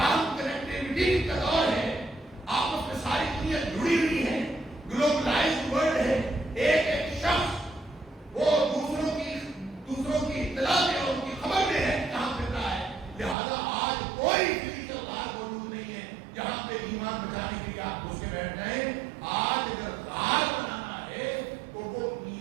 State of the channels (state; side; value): drops out; left; at 13.4 s